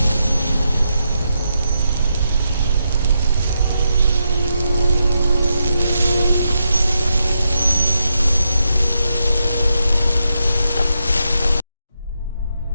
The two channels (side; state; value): both; inverted; correlation -0.83